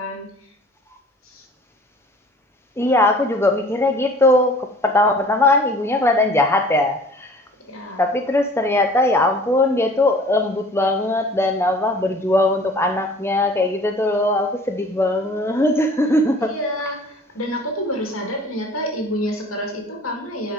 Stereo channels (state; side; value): normal; both; correlation 0.48